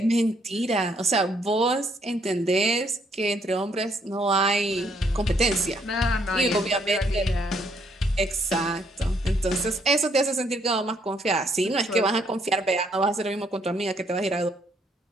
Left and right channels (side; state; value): both; normal; correlation 0.69